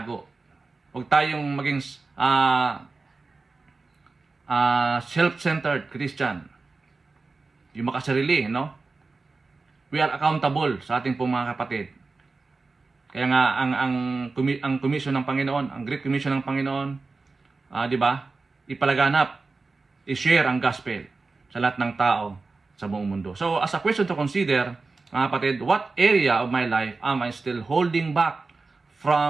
Huwag tayong maging self-centered Christian. Yung makasarili, no? We are accountable sa ating pong mga kapatid. Kaya nga, ang commission ng Panginoon, ang Great Commission ng Panginoon, di ba, ipalaganap, i-share ang gospel sa lahat ng tao sa buong mundo. So, as a question to consider, mga kapatid, what area of my life am I still holding back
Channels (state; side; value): quieter; left; 3.9 dB